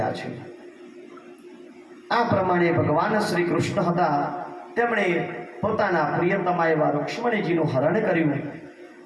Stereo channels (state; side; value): identical; both; correlation 1.00